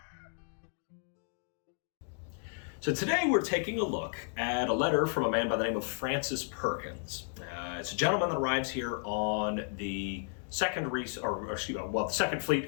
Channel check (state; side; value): silent; right; 56 dB below the other